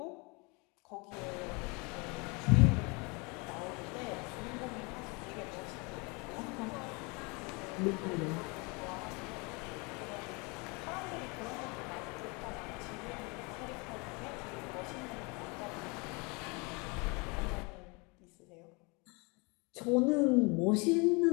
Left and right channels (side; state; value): right; quieter; 29.3 dB